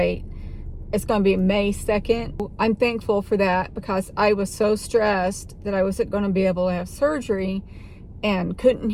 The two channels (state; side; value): identical; both; correlation 1.00